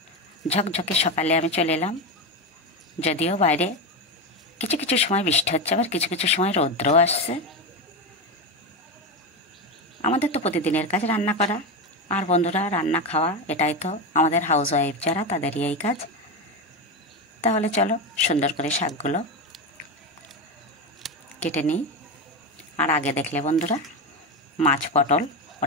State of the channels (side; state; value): both; normal; correlation 0.16